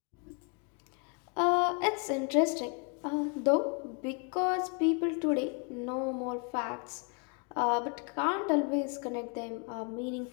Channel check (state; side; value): quieter; right; 35.4 dB